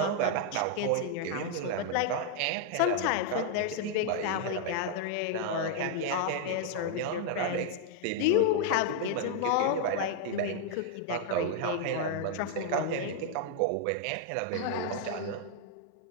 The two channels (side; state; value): both; different; correlation 0.00